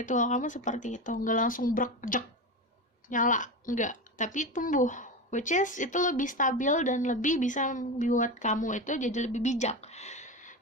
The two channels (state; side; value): normal; both; correlation 0.22